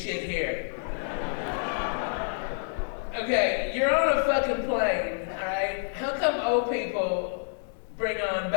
here. Okay, you're on a fucking plane, alright? How come old people bring on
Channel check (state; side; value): silent; right; 59 dB below the other